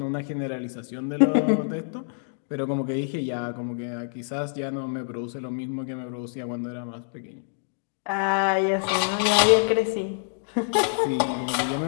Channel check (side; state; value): right; silent; digital silence